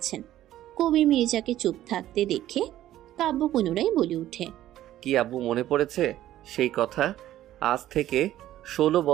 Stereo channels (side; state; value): left; quieter; 13.4 dB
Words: কবির মির্জাকে চুপ থাকতে দেখে কাব্য পুনরায় বলে ওঠে, কি আব্বু মনে পড়েছে সেই কথা? আজ থেকে 16